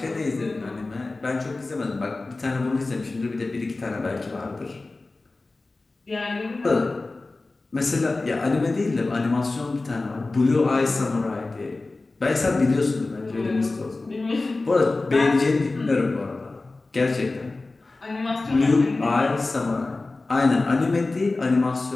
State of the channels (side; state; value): right; quieter; 3.3 dB